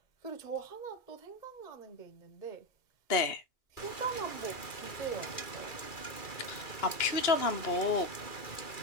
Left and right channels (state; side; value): late; right; 2.3 ms